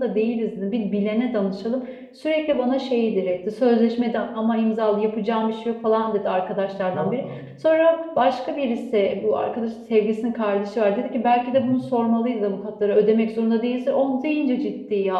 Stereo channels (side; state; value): both; identical; correlation 1.00